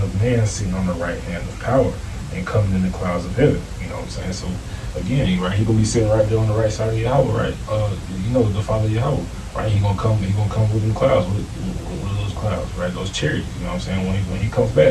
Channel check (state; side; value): identical; both; correlation 1.00